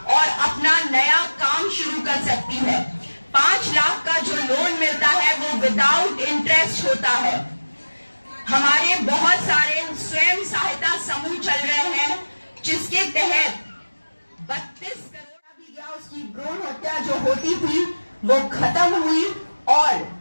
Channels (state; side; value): inverted; both; correlation -1.00